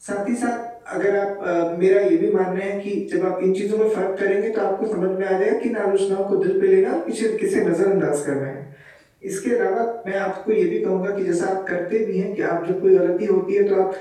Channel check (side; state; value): both; identical; correlation 1.00